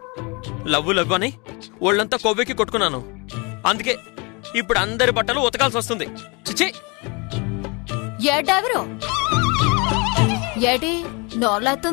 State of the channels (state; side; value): quieter; right; 29.8 dB